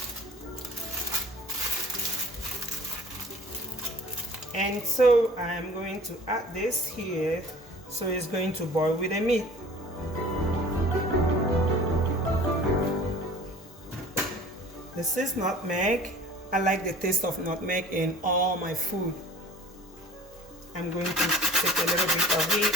And so I'm going to add this here, so it's going to boil with the meat. This is nutmeg. I like the taste of nutmeg in all my food. I'm going to take a little bit of it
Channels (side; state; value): both; normal; correlation 0.46